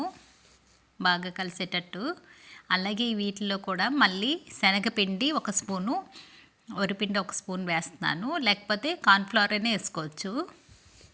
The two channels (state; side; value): identical; both; correlation 1.00